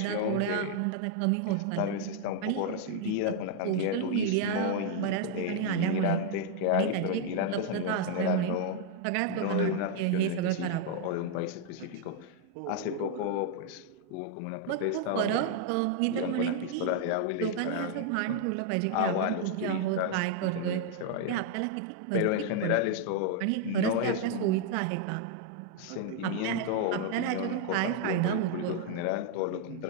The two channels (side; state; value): both; different; correlation 0.00